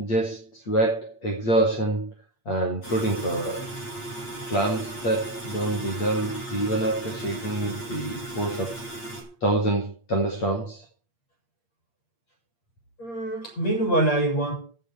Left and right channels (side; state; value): right; late; 8.6 ms